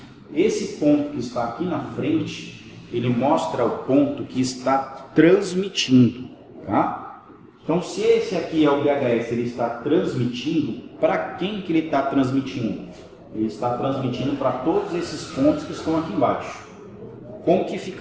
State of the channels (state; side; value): identical; both; correlation 1.00